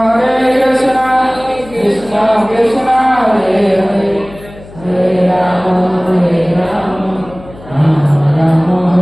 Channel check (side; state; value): left; noise; hum, 19 dB below the sound